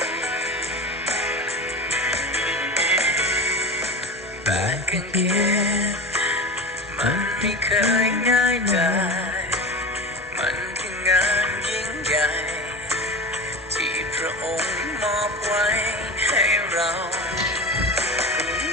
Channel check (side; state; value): both; normal; correlation 0.30